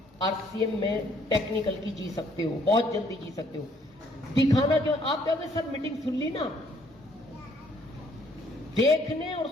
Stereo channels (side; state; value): both; normal; correlation 0.64